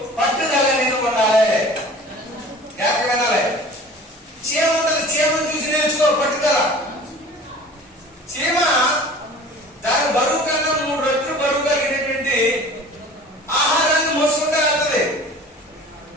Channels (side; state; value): both; normal; correlation 0.43